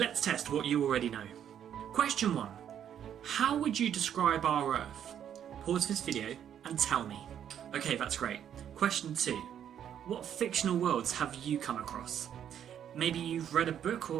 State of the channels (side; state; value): left; quieter; 9.5 dB